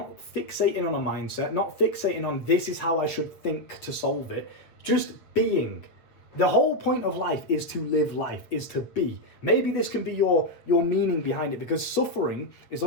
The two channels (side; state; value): right; late; 8.0 ms